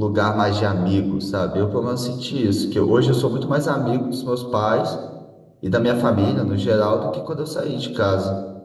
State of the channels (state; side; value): identical; both; correlation 1.00